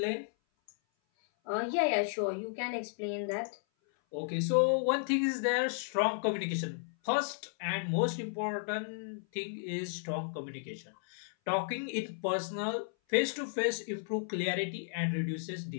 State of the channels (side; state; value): right; silent; 55 dB below the other